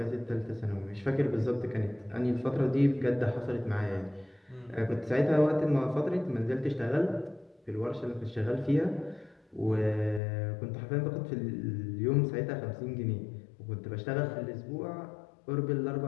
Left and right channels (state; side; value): drops out; right; at 10.2 s